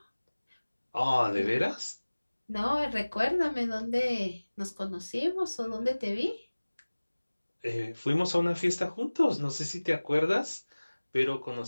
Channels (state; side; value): inverted; both; correlation -1.00